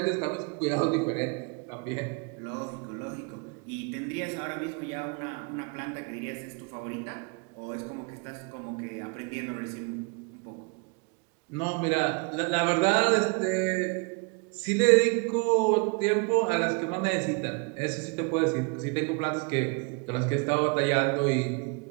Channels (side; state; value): left; quieter; 33.1 dB